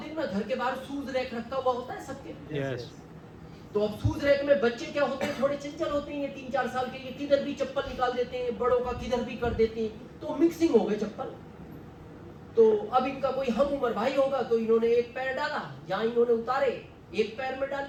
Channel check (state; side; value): identical; both; correlation 1.00